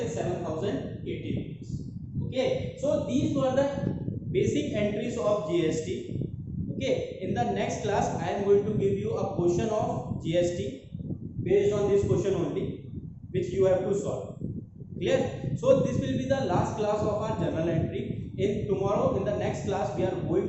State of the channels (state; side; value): identical; both; correlation 1.00